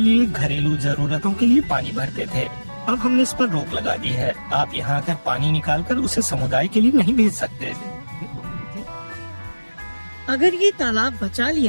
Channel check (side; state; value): both; inverted; correlation -1.00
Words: घरेलू जरूरतों के लिए पानी भरते थे। अब हमने इस पर रोक लगा दी है। आप यहाँ आकर पानी निकालकर उसे समुदाय के लिए नहीं भेज सकते। अगर ये तालाब बचा